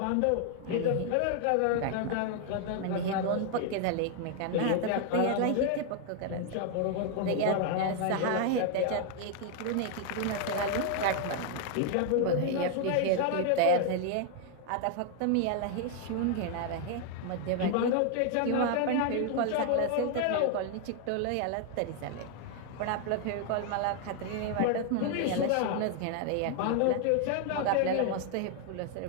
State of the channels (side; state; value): both; different; correlation 0.00